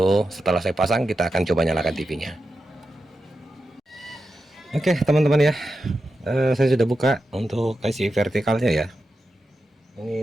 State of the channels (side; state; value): both; normal; correlation 0.90